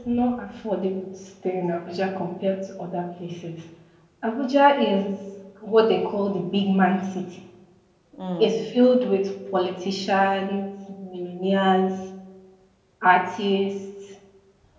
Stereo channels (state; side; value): identical; both; correlation 1.00